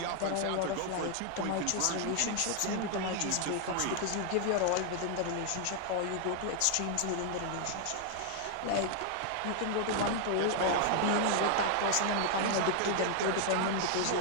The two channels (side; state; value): both; different; correlation 0.00